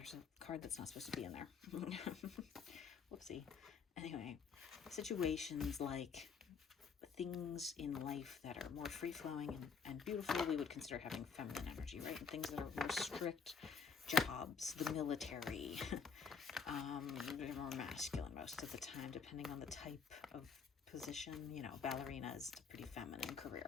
a card that's not supposed to be in there. Whoopsie. Anyway, situations like things in life that are more free-flowing and beautiful, we would consider having feminine energy, right? And things that are more strict, jobs, the military, they're more masculine most of the time, depending on the type of position. You know, ballerina is a pretty feminine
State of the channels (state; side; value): quieter; right; 5.9 dB